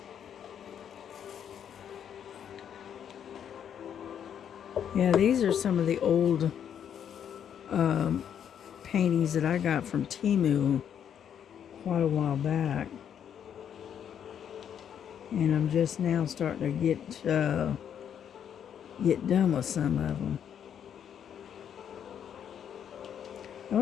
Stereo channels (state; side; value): quieter; right; 8.8 dB